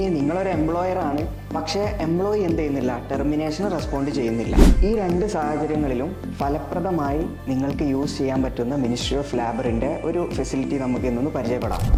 നിങ്ങളൊരു എംപ്ലോയർ ആണ്, പക്ഷേ എംപ്ലോയി എന്ത് ചെയ്യുന്നില്ല, ടെർമിനേഷൻ റെസ്പോണ്ട് ചെയ്യുന്നില്ല. ഈ രണ്ട് സാഹചര്യങ്ങളിലും ഫലപ്രദമായി നിങ്ങൾക്ക് യൂസ് ചെയ്യാൻ പറ്റുന്ന മിനിസ്ട്രി ഓഫ് ലേബറിൻ്റെ ഒരു ഫെസിലിറ്റി നമുക്ക് ഇന്നൊന്ന് പരിചയപ്പെടാം.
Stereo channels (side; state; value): both; identical; correlation 1.00